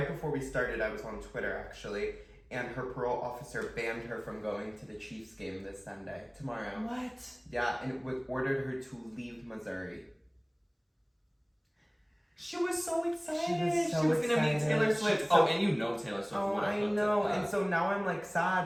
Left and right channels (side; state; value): both; identical; correlation 1.00